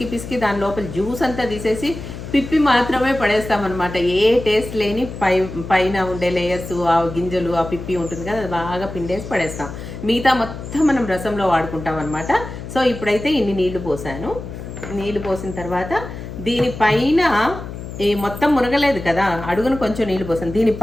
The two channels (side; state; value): left; noise; hum, 10 dB below the sound